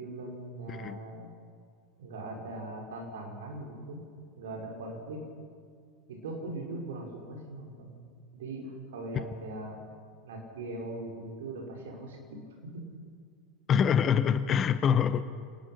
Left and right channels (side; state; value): right; quieter; 5.7 dB